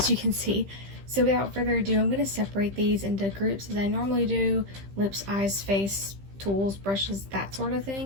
you can see. So without further ado, I'm going to separate these into groups as I normally do: lips, eyes, face, tools, brushes, that sort of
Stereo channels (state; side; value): late; left; 15 ms